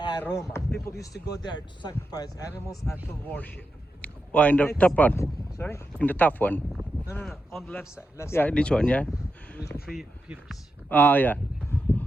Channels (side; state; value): both; normal; correlation 0.87